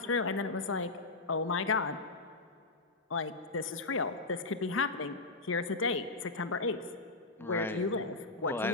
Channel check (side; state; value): right; quieter; 3.5 dB